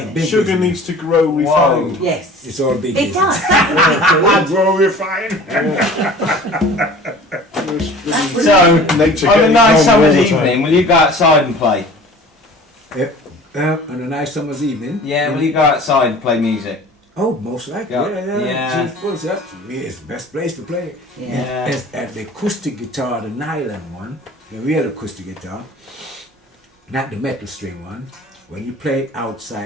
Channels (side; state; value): both; normal; correlation 0.45